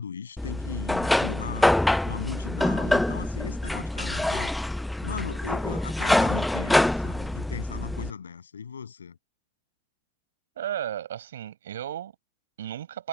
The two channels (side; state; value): both; normal; correlation 0.84